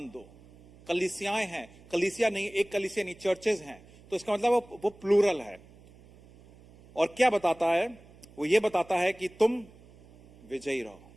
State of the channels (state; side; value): noise; right; hum, 24 dB below the sound